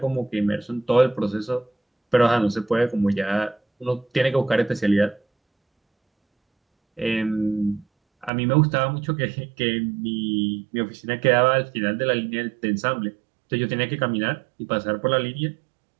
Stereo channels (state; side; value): drops out; left; at 8.3 s